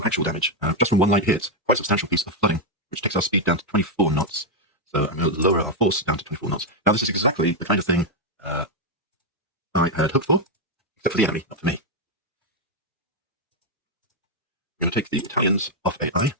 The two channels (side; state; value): both; normal; correlation 0.01